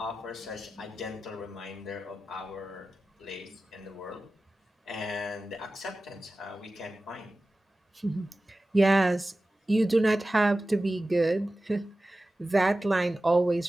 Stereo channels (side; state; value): both; normal; correlation 0.95